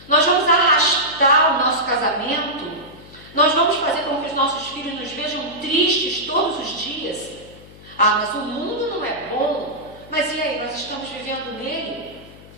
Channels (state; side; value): noise; left; hum, 20 dB below the sound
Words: Nós vamos arrastar o nosso casamento? Nós vamos fazer com que os nossos filhos nos vejam tristes todos os dias? Ah, mas o mundo não é bom. Mas e aí, nós estamos vivendo nele?